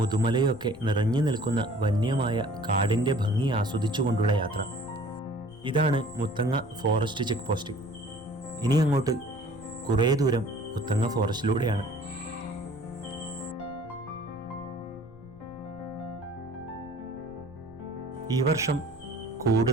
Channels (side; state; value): left; noise; rumble, 22 dB below the sound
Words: ഒക്കെ നിറഞ്ഞു നിൽക്കുന്ന വന്യമായ കാടിൻ്റെ ഭംഗി ആസ്വദിച്ചുകൊണ്ടുള്ള യാത്ര. ഇതാണ് മുത്തങ്ങ ഫോറസ്റ്റ് ചെക്ക് പോസ്റ്റ്. ഇനി അങ്ങോട്ട് കുറേ ദൂരം മുത്തങ്ങ ഫോറസ്റ്റിലൂടെയാണ്. ഈ വർഷം